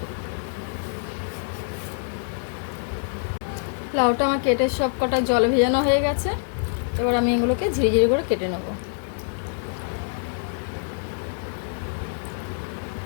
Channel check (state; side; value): silent; right; digital silence